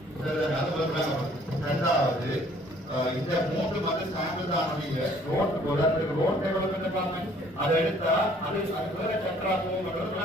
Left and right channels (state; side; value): normal; both; correlation 0.58